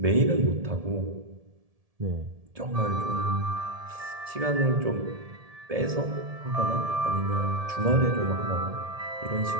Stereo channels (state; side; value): late; left; 1.7 ms